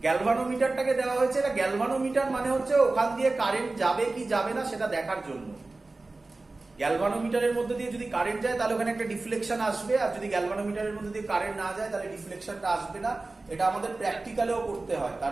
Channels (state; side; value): quieter; left; 3.3 dB